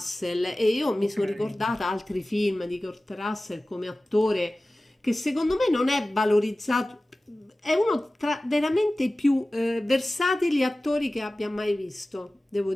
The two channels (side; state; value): both; normal; correlation 0.97